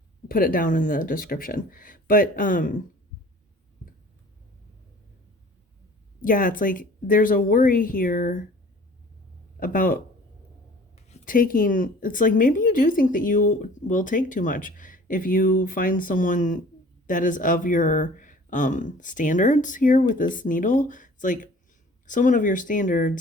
put it down in the description. But yeah, it's like there's a worry here about taking, it's like maybe you do think that you will take too much if you find someone that is of your standards here with this needle. It's like someone of your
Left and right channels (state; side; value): normal; both; correlation 0.48